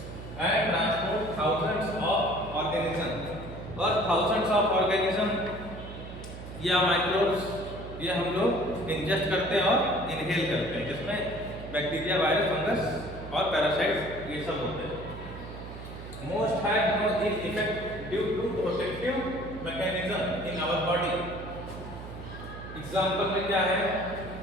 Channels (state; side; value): noise; right; hum, 12 dB below the sound